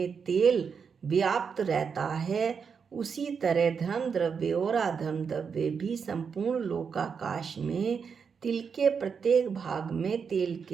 तेल व्याप्त रहता है, उसी तरह धर्म द्रव्य और अधर्म द्रव्य भी संपूर्ण लोकाकाश में तिल के प्रत्येक भाग में तेल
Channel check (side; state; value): left; quieter; 6.2 dB